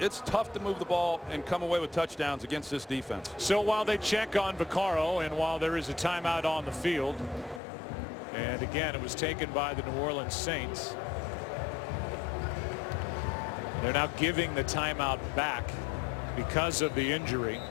tough to move the ball and come away with touchdowns against this defense. So while they check on Vaccaro, and while there is a timeout on the field, and again, it was taken by the New Orleans Saints, they're now giving the timeout back because of the injury.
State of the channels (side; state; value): right; drops out; at 7.6 s